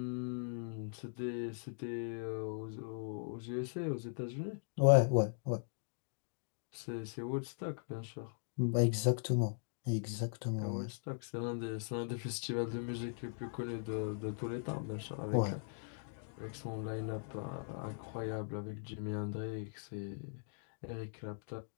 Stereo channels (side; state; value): right; silent; digital silence